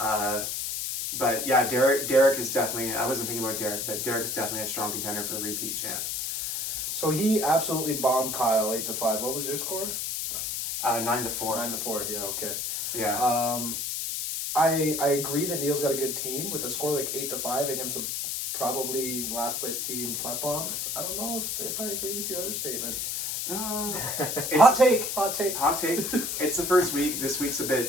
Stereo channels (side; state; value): left; noise; hiss, 2 dB below the sound